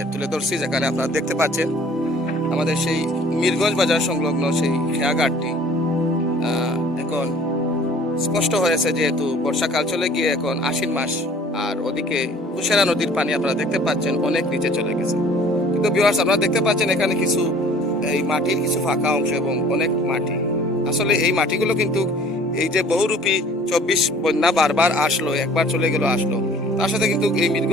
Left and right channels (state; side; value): normal; both; correlation 0.52